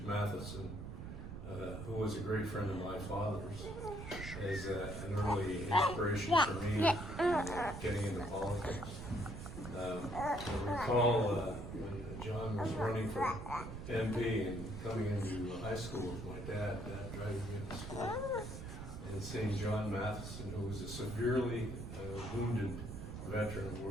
Matheson, who was a great friend of my father's, as an early inspiration for me in getting into politics. I recall when John was running for MP and coming into high school with my dad driving me into school, and seeing John Matheson, who was a severely wounded veteran of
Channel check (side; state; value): right; noise; rumble, 8 dB below the sound